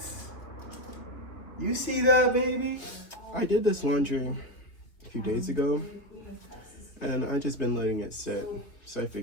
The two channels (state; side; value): late; right; 3.0 ms